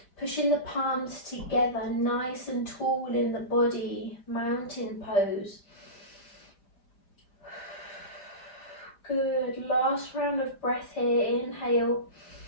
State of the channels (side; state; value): right; late; 5.0 ms